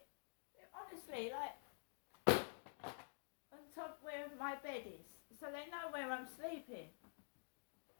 Honestly, like on top where my bed is, so they know where I'm sleeping.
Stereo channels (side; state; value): right; silent; digital silence